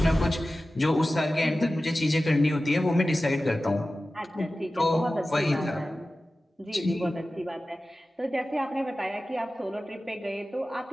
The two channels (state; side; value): normal; both; correlation 0.95